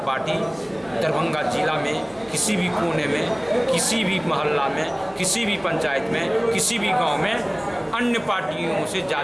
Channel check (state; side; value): noise; right; hum, 27 dB below the sound